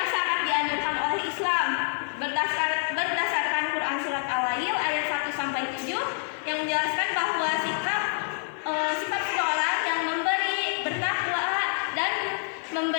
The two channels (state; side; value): silent; right; digital silence